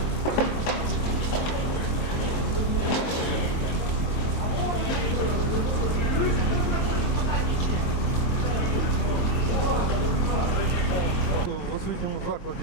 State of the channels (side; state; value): right; late; 23 ms